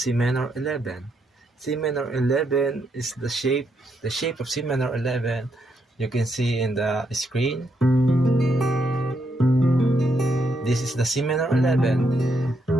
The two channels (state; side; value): normal; both; correlation 0.77